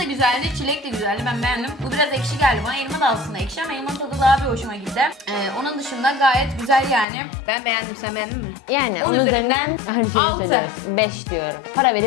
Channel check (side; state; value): right; drops out; at 7.1 s